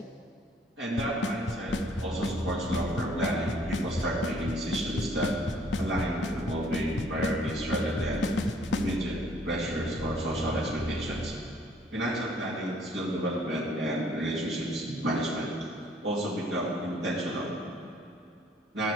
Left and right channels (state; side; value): normal; both; correlation 0.61